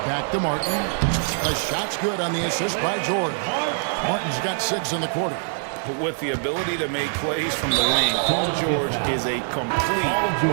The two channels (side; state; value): left; silent; 63 dB below the other